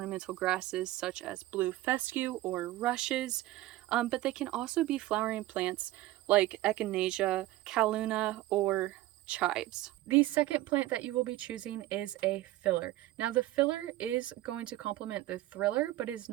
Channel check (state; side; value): quieter; left; 16.2 dB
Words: grasses such as blue fescue or rushes, but they can also be flowering plants like echinacea, calluna, or chives. The second plant that you will be choosing is a filler. Now the filler is going to complement the thriller, but is